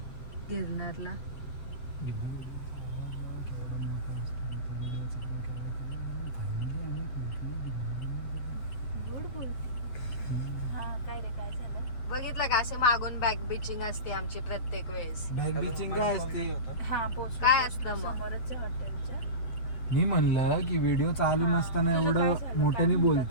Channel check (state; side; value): late; right; 8.1 ms